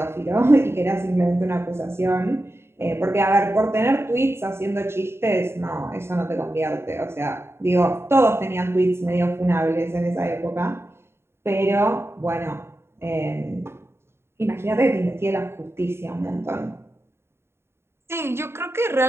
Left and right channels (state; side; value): late; left; 0.12 ms